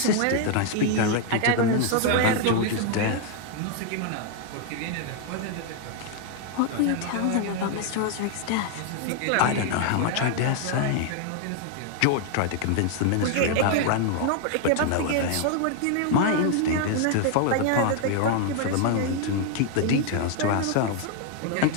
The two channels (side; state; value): both; different; correlation 0.00